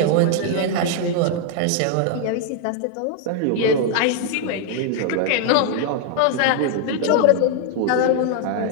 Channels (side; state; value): both; different; correlation 0.00